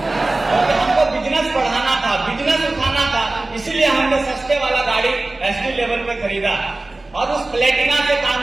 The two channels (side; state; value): left; quieter; 3.0 dB